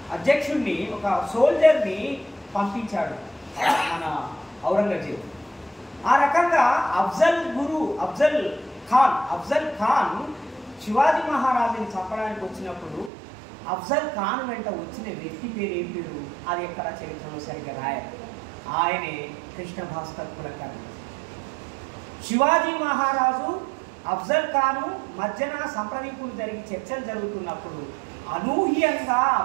అధ్యక్షుడిని, ఒక సోల్జర్ని పంపించాడు మన ఔరంగజేబు. ఆ రకంగా అఫ్జల్ ఖాన్ శివాజీ మహారాజుని చంపడానికి వచ్చినప్పుడు అఫ్జల్ ఖాన్ వెంట వచ్చిన వ్యక్తి పేరు ఏం పేరు అది ఎక్కడ చరిత్రలో సరిగ్గా రాయాలి. ఆయనే కృష్ణ భాస్కర్ కులకర్ణి. శివాజీ మహారాజు అఫ్జల్ ఖాను మధ్యన సంప్రదింపులు జరిగి చర్చలు జరుగుతున్నప్పుడు అనూహ్యంగా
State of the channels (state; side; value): drops out; left; at 13.1 s